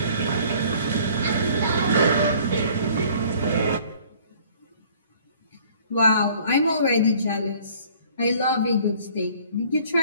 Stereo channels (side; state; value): both; inverted; correlation -0.54